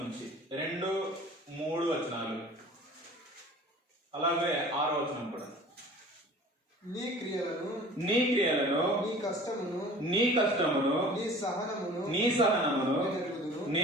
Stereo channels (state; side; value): normal; both; correlation 0.45